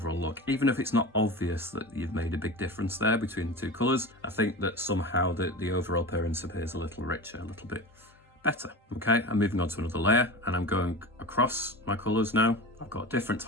look. Even if it's not obvious that you've made a big difference there between the two colours, I think that somehow the overall appearance appears a little richer, a little bit better. Okay, I'm moving on to another layer, and I'm going across my colours now. I've got different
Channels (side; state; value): both; normal; correlation 0.30